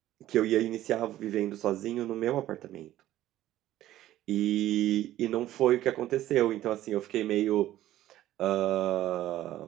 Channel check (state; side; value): quieter; left; 13.9 dB